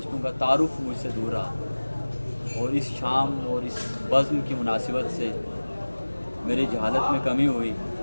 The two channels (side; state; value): both; inverted; correlation -1.00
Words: का तारुफ मुझसे दूर रहा, और इस शाम और इस बज़्म की मुनासिबत से मेरी जहालत में कमी हुई।